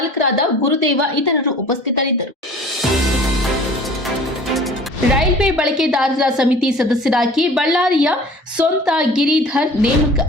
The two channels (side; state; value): both; normal; correlation 0.46